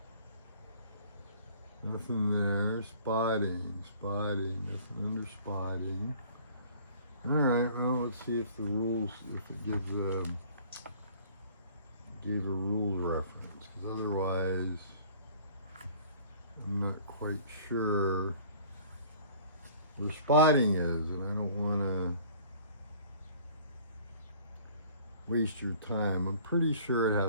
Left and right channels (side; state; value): both; inverted; correlation -0.52